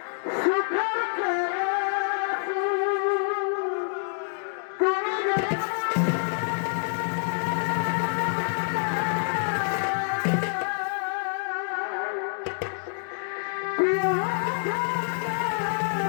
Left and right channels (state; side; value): silent; right; digital silence